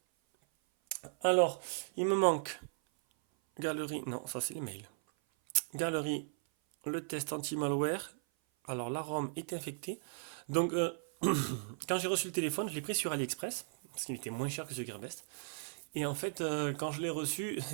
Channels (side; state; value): left; silent; 53 dB below the other